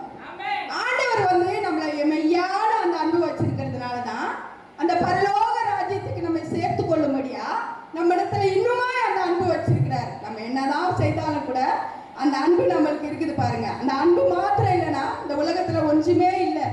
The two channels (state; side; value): identical; both; correlation 1.00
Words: ஆண்டவர் அந்த அன்பு நம்மளுக்கு இருக்குது பாருங்க. அந்த அன்பு மாத்திரம் இல்லைன்னா இந்த உலகத்துல ஒன்றுமே இல்லை.